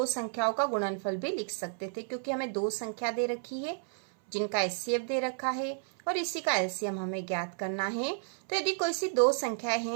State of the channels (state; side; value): silent; left; 57 dB below the other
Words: संख्याओं का गुणनफल भी लिख सकते थे, क्योंकि हमें दो संख्या दे रखी है जिनका HCF दे रखा है और इसी का LCM हमें ज्ञात करना है। तो यदि कोई सी दो संख्याएं